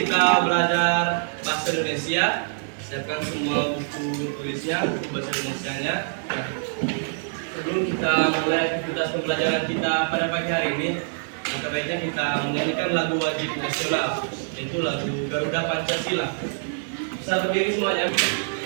kita belajar bahasa Indonesia. Siapkan semua buku tulisnya, buku bahasa Indonesianya. Sebelum kita mulai aktivitas pembelajaran kita pada pagi hari ini, maka baiknya kita menyanyikan lagu wajib nasional, yaitu lagu Garuda Pancasila. Bisa berdiri semuanya.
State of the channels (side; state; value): left; silent; digital silence